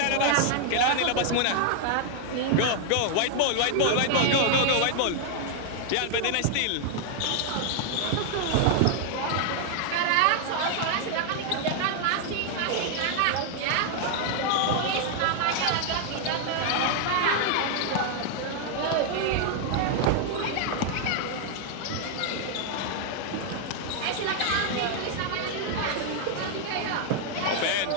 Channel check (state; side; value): different; both; correlation 0.00